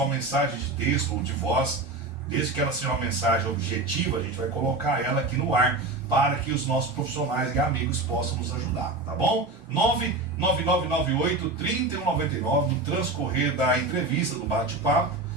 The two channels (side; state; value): left; quieter; 3.0 dB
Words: mensagem de texto ou de voz, desde que ela seja uma mensagem objetiva, a gente vai colocar ela aqui no ar para que os nossos profissionais e amigos possam nos ajudar, tá bom? 99998-3199, no transcorrer da entrevista, do bate-papo,